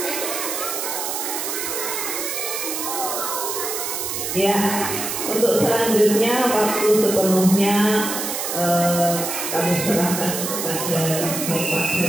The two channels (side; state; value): right; noise; hiss, 3 dB below the sound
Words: Ya, untuk selanjutnya waktu sepenuhnya kami serahkan kepada Bapak